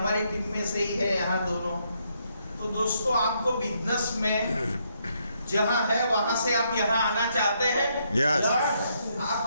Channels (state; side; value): inverted; both; correlation -0.75